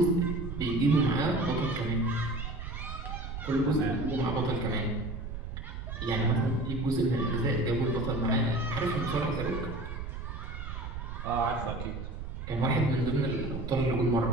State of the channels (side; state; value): right; noise; rumble, 7 dB below the sound